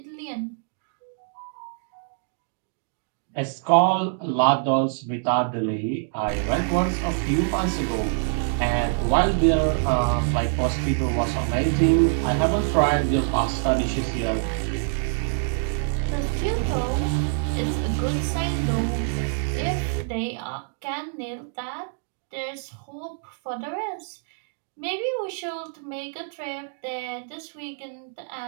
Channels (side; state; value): left; silent; digital silence